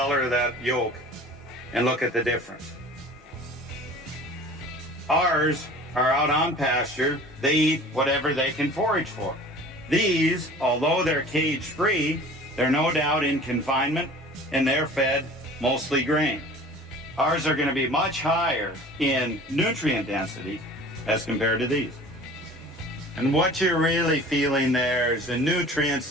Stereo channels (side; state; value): both; normal; correlation 0.44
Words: of that yolk and look at the difference. Ours are out on pasture. They eat whatever they can forage for. These, although they're cage-free, they're no doubt in confinement and they're fed mostly grain. Ours are going to be much higher in nutrient density as compared to these. And what you're really feeling there is the nutrients